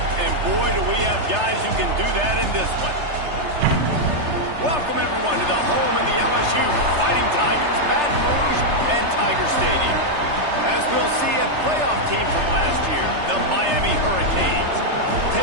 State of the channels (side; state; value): left; late; 3.3 ms